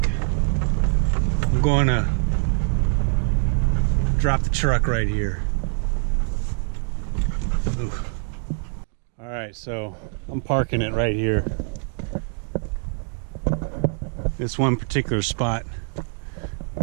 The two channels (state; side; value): silent; left; 56 dB below the other